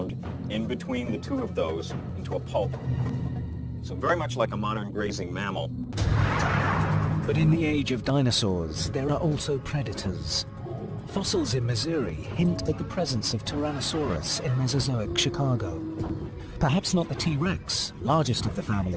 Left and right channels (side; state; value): both; identical; correlation 1.00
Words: in between the two of those into a pulp. So very much like a modern grazing mammal. But in the age of dinosaurs, there are also predators. Fossils in Missouri hint at the presence of Tyrannosaurus in Mesozoic Chicago. Perhaps not the T-Rex, largest of the